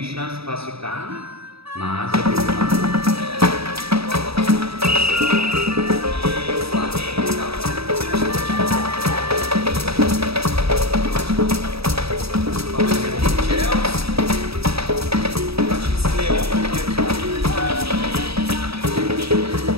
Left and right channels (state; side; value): late; left; 0.77 ms